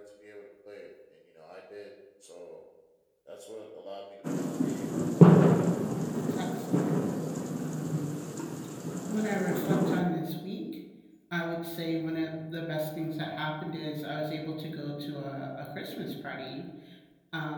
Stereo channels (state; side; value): identical; both; correlation 1.00